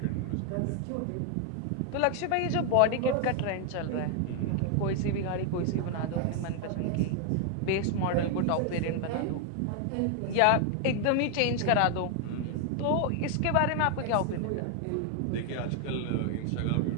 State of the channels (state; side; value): different; both; correlation 0.00